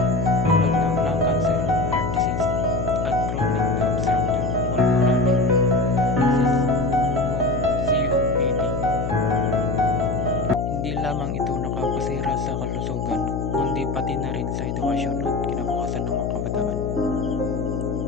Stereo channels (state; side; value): noise; left; hum, 3 dB below the sound